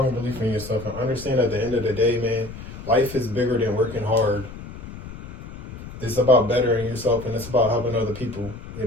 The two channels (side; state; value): left; noise; rumble, 12 dB below the sound